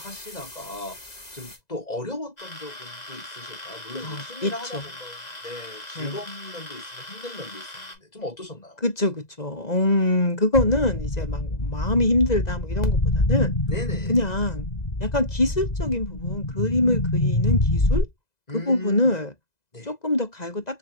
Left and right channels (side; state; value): right; late; 2.0 ms